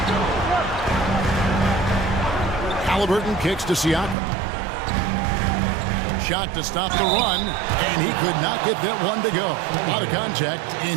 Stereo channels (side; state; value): left; drops out; at 4.2 s